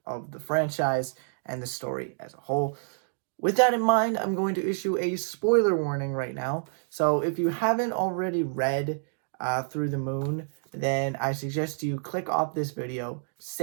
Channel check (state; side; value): silent; left; digital silence